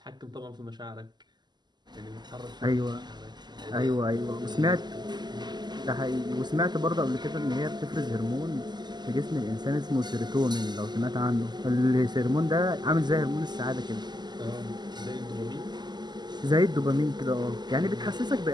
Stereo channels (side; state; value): left; late; 0.21 ms